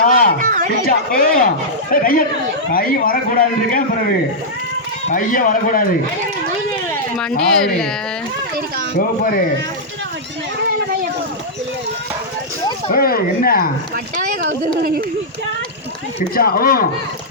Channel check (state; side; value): normal; both; correlation -0.09